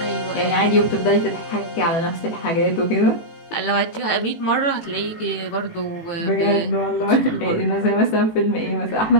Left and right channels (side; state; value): right; late; 18 ms